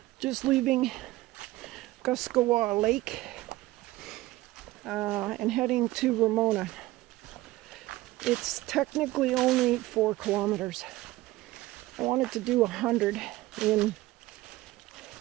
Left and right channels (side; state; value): left; quieter; 17.9 dB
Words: Just leaving Guscawa Lake and heading to Ramona. It's technically only 4 kilometers. I wanted to do 100 in